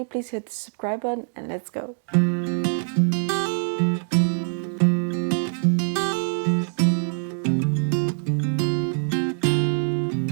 please hit the subscribe button and let's go.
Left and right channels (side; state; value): left; silent; digital silence